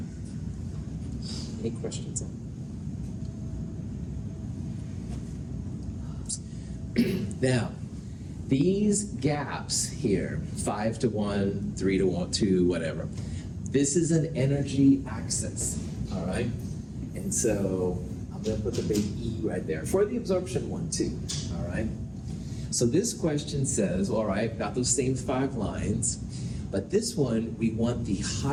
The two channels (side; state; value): both; identical; correlation 1.00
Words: Any questions on that? Now, these gaps here, 5 to 1, 3 to 1, 2, whatever, this is an energy axis, all right? And so I'm going to put the big E right there for the absorption one too, all right? So this question says, all right, got those same 5 lines, but this one, we want the